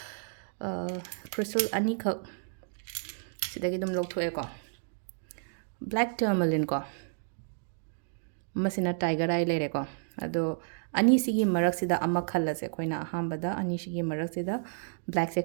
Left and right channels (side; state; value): left; silent; digital silence